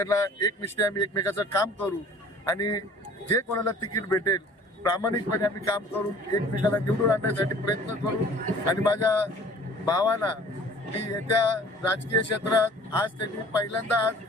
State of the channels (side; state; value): both; normal; correlation 0.49